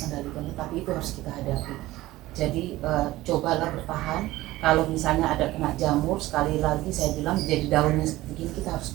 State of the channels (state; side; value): quieter; left; 17.2 dB